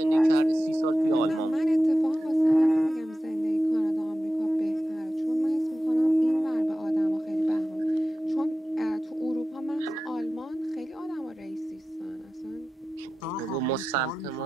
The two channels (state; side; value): normal; both; correlation 0.94